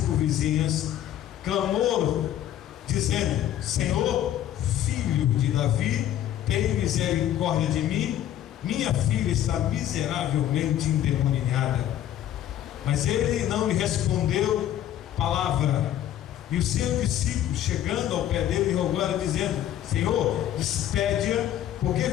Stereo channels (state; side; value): quieter; right; 11.6 dB